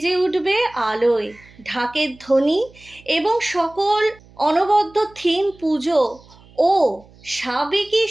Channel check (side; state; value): right; noise; hum, 26 dB below the sound